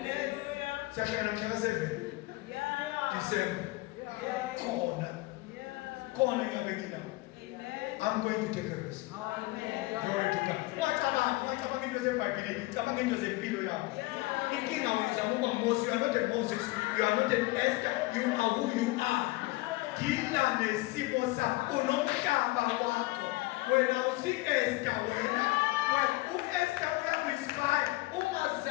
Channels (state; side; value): quieter; right; 20.9 dB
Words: Siyashaya mhla ka-7. December. Khona ngiyabe nginawo. I'm going to take a risk. Amen. Glory to God. Wacabanga into zeBhayibheli, cabanga into zempilo yakho. Inkinga wena uzama ukuba Moses, you are not a Moses, you are not an Esther, you are who you are. Dila nesimo sakho, unomhlaba wakho. Wena usi-Esther wena. U-Esther uyaku-inspire,